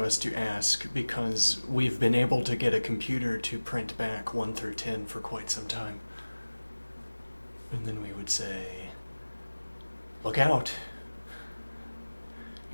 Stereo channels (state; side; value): inverted; both; correlation -1.00